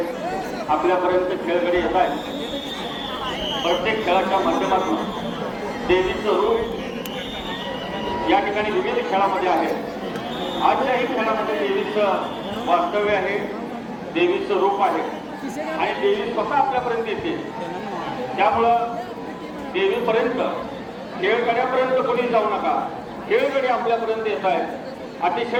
आपल्यापर्यंत खेळगडी येत आहे. प्रत्येक खेळाच्या माध्यमातून देवीचं रूप या ठिकाणी विविध खेळामध्ये आहे. आजच्याही खेळामध्ये देवीचं वास्तव्य आहे, देवीचं रूप आहे आणि देवी स्वतः आपल्यापर्यंत येते. त्यामुळं देवीपर्यंत, खेळगड्यापर्यंत कोणी जाऊ नका. खेळगडी आपल्यापर्यंत येत आहेत.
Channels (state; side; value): identical; both; correlation 1.00